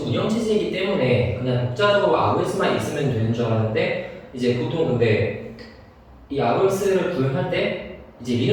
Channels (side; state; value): both; identical; correlation 1.00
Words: 운영체제이기 때문에 그냥 독자적으로 ROS만 있으면 되는 줄 알았는데 이제 보통 근데 이 ROS를 구현할 때 이제